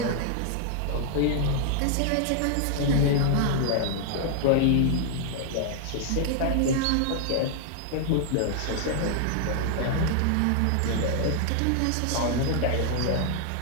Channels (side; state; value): both; different; correlation 0.00